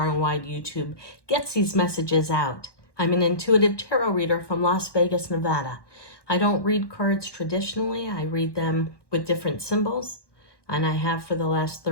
and wide YouTube gets these messages out. I'm an intuitive tarot reader from Las Vegas, Nevada. I don't read cards traditionally. I read them with different symbols, and I have for the last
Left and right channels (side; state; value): right; late; 1.1 ms